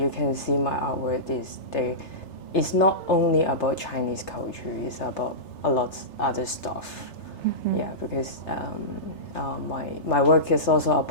can see my artwork it's not only about Chinese culture, it's about a lot of other stuff. Yeah, because my work is also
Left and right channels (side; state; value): right; late; 3.3 ms